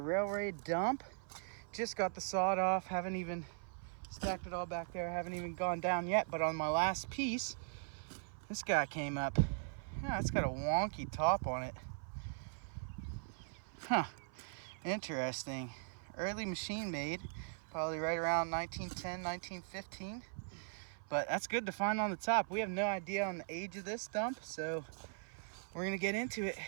dump. Just got the sawed off, haven't even stacked it all back there, haven't even gone down yet, but on my last piece, this guy came up. Yeah, it's got a wonky top on it. Huh, interesting. Early machine made, probably right around 1910, 1915. But that's good to find on the top. We have no idea on the age of this dump, so we're gonna get into it.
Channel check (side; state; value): left; silent; 51 dB below the other